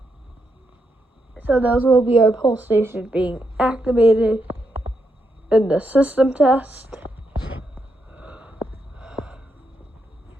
So those will be our pole stations being activated in the system test.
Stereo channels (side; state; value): both; normal; correlation 0.81